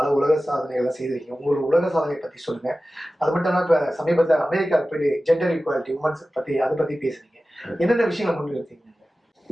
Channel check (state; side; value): normal; both; correlation 0.95